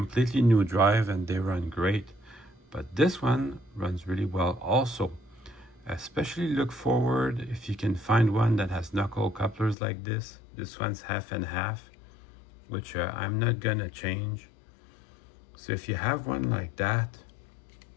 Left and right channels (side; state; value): right; drops out; at 9.8 s